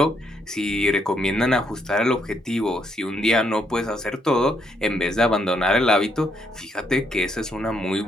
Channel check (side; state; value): both; normal; correlation 0.74